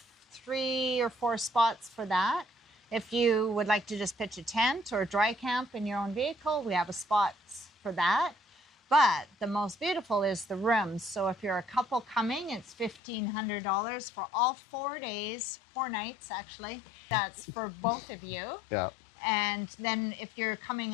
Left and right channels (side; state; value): right; drops out; at 13.0 s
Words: 3 or 4 spots for that. If you would like to just pitch a tent or dry camp in your own vehicle, we have a spot for that. But the most beautiful is the rooms. So if you're a couple coming, it's $1,500 for all 4 days, 4 nights actually. That's for both of you. Yeah. And then if you're